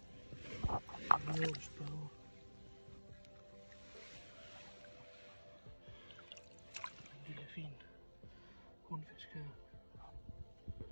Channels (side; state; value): both; inverted; correlation -1.00